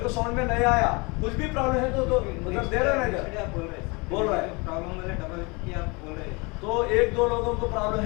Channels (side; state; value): right; quieter; 28.1 dB